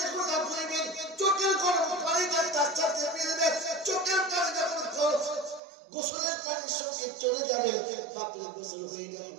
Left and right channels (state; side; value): drops out; left; at 5.6 s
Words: আপনাদের চোখের গরম পানিটা তার সাথে মিলবে, চোখের পানি যখন গোসলের পানির সঙ্গে চলে যাবে বাপের গোসল হয়ে